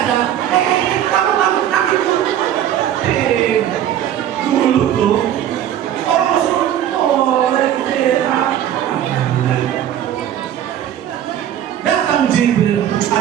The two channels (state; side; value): quieter; left; 10.9 dB